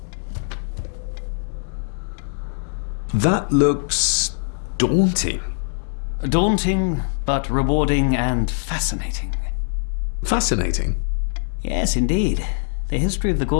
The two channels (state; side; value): silent; right; digital silence